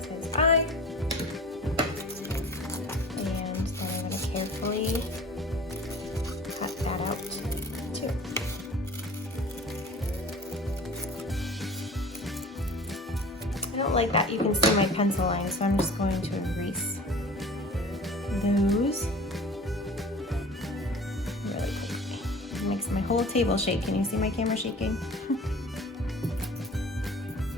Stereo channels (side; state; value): both; normal; correlation 0.42